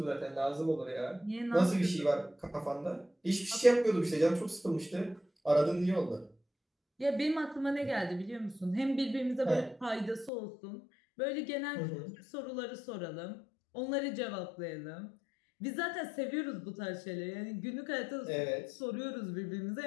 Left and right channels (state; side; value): drops out; right; at 10.3 s